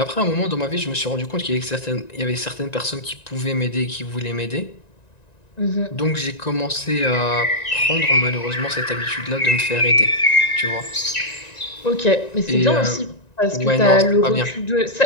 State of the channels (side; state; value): right; late; 1.9 ms